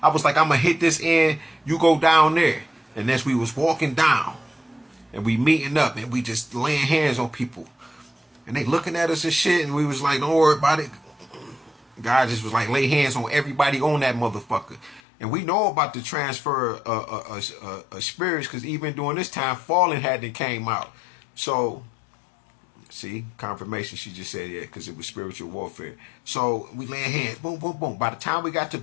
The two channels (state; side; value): drops out; right; at 15.0 s